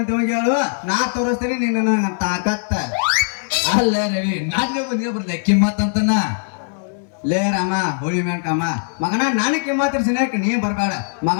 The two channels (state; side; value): silent; right; digital silence